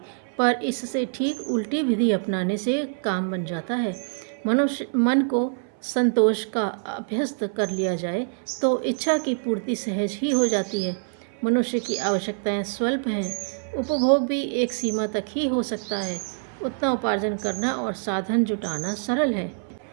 पर इससे ठीक उल्टी विधि अपनाने से काम बन जाता है। मनुष्य मन को संतोष का अभ्यस्त कर लिया जाए तो इच्छा की पूर्ति सहज ही हो जाती है। मनुष्य की आवश्यकताएं स्वल्प हैं, उपभोग भी एक सीमा तक ही हो सकता है। उतना उपार्जन करना और साधन जुटाना सरल है।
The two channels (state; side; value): silent; left; 59 dB below the other